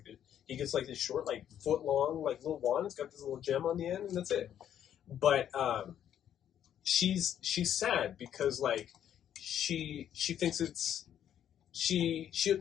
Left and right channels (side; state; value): right; quieter; 10.0 dB